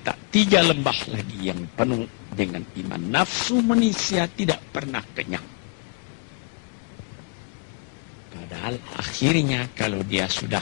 3 lembah lagi yang penuh dengan iman. Nafsu manusia tidak pernah kenyang. Padahal akhirnya kalau dia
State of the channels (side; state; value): right; quieter; 37.5 dB